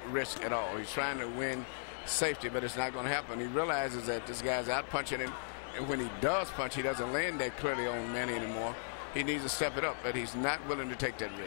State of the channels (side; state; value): right; silent; digital silence